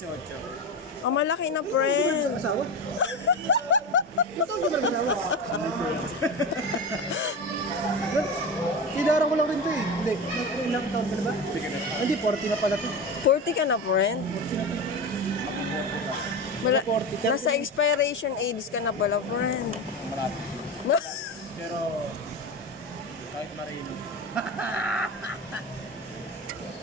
Ang malaki na, friend. Asawa? Ilan taon ka ba nag-asawa? Kinarang ko lang rin to eh. Hindi. Ilang taon ka na ba? Hindi, 40 na pala to. 40 ka na, friend. Nasa expiration age ka na pala, friend. Marami. Pero, kahit marino.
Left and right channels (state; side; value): normal; both; correlation 0.23